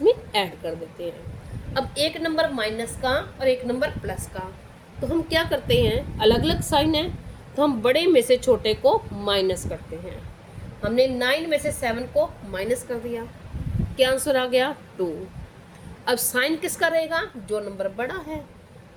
में ऐड कर देते हैं। अब एक नंबर माइनस का और एक नंबर प्लस का, तो हम क्या करते हैं, अलग अलग साइन है तो हम बड़े में से छोटे को माइनस करते हैं। हमने 9 में से 7 को माइनस कर दिया, क्या आंसर आ गया, 2। अब साइन किसका रहेगा, जो नंबर बड़ा है।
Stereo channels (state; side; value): identical; both; correlation 1.00